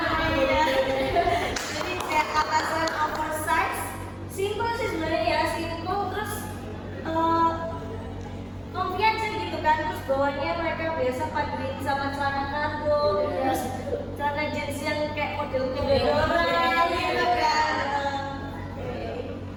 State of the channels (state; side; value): identical; both; correlation 1.00